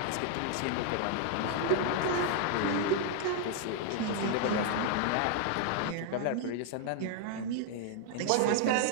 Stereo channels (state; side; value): different; both; correlation 0.00